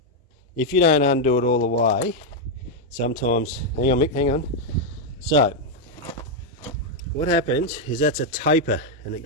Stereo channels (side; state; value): both; normal; correlation 0.00